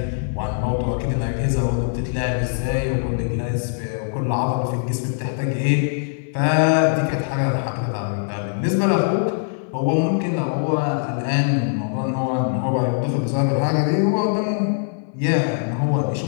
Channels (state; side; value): silent; right; 58 dB below the other